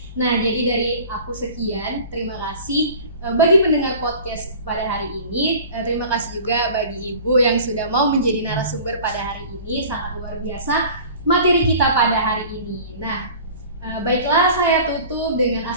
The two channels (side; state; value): both; inverted; correlation -0.43